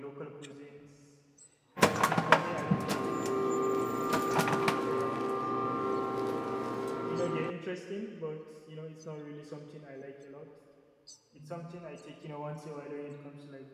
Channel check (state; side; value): identical; both; correlation 1.00